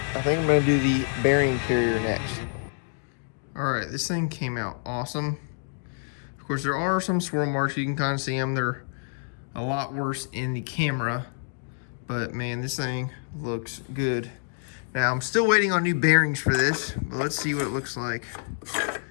I think I'm going to do the bearing carrier next. Alright, this thing came out awesome. Of course, there are some swirl marks. You can kind of see them. They're a lot worse in the camera. But, man, this thing looks good. Now, I'm still waiting on new bearings for this. But let's see what it looks like.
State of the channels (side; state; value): right; silent; 60 dB below the other